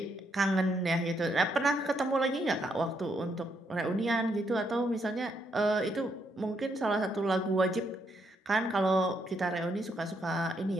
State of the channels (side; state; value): both; normal; correlation 0.76